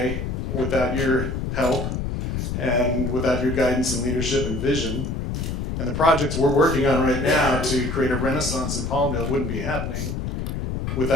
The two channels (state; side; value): noise; left; rumble, 3 dB below the sound